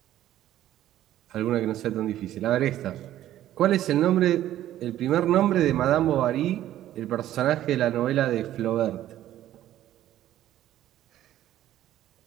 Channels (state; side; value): quieter; left; 12.9 dB